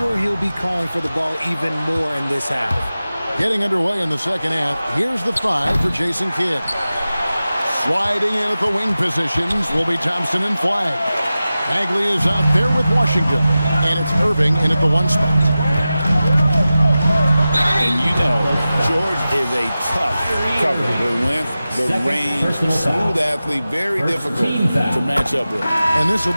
he'll be calling for the ball even more in this half. Getting underway in the second half, here's the 5 for Jason Kidd. Sliding in at the wing positions will be Thompson and Flagg. Bagley is out there with Washington, and it's Irving in at the 1 spot. And you know, George is a tough cover. The length, the range, smooth athlete, very difficult to match up with. And this will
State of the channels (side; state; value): both; inverted; correlation -0.95